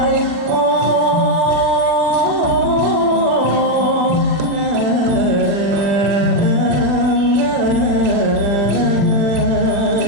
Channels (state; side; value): late; left; 40 ms